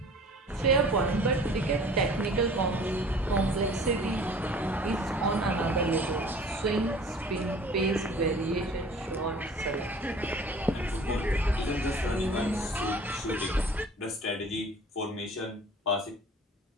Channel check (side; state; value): both; normal; correlation 0.47